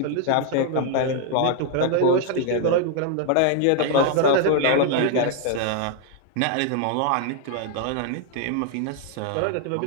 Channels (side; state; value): both; different; correlation 0.00